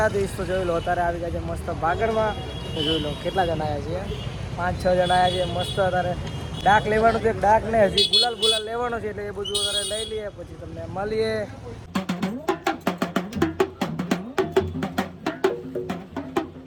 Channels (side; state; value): both; identical; correlation 1.00